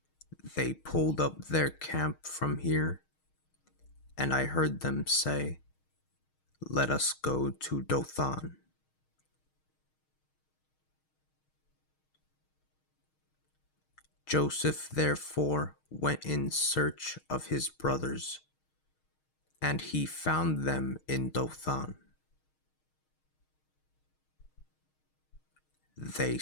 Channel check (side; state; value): right; late; 6.4 ms